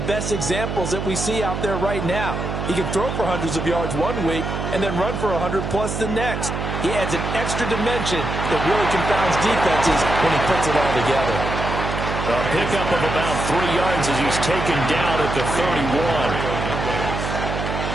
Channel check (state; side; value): noise; right; hum, 3 dB below the sound